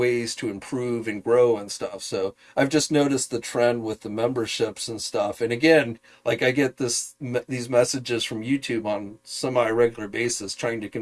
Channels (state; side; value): identical; both; correlation 1.00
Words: to improve and grow and stuff. So I've just noticed the trend with the memberships and stuff. And again, like I get these messages from YouTube on semi-regular basis trying to